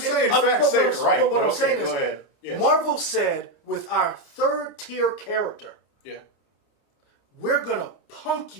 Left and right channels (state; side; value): late; right; 29 ms